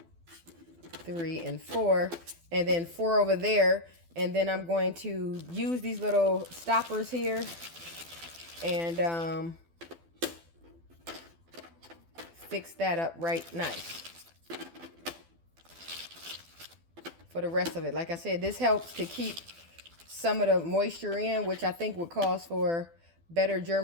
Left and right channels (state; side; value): late; left; 12 ms